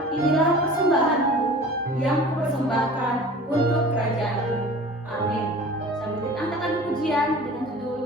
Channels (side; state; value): both; normal; correlation 0.41